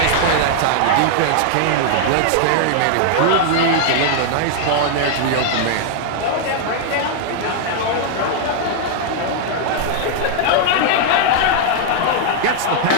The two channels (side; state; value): both; different; correlation -0.01